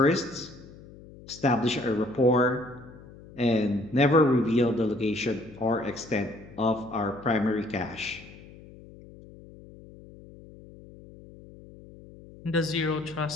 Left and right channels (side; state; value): left; noise; hum, 20 dB below the sound